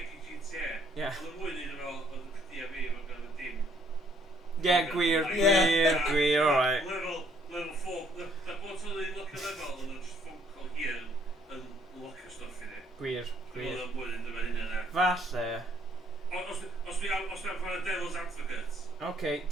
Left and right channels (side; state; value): both; normal; correlation 0.65